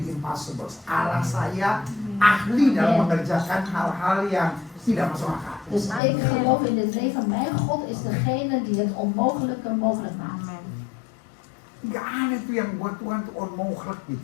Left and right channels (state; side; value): drops out; right; at 6.0 s